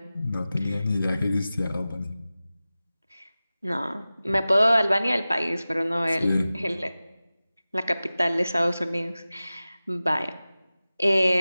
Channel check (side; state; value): both; inverted; correlation -0.96